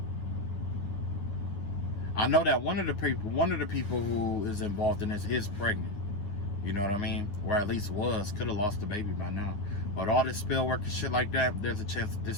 I know that one of the people who is involved in this is pregnant. You know what I mean? Or at least was. Could have lost the baby by now. But all this spell work and shit like that, there's a chance that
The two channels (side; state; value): right; late; 9.5 ms